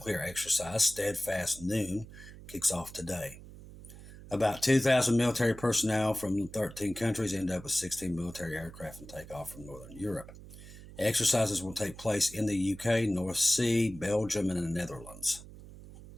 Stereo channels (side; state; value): right; noise; hum, 16 dB below the sound